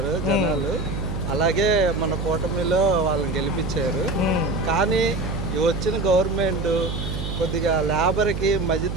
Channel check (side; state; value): right; noise; hum, 4 dB below the sound